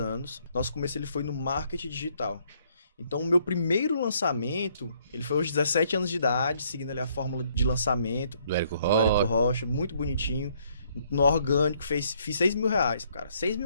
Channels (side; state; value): both; inverted; correlation -0.68